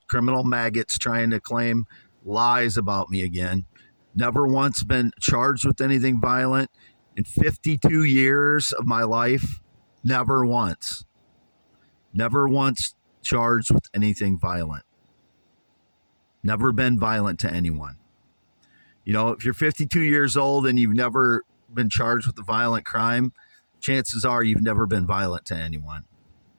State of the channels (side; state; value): both; inverted; correlation -1.00